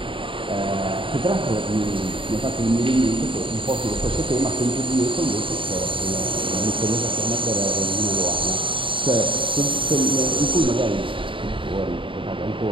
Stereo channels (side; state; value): left; late; 0.25 ms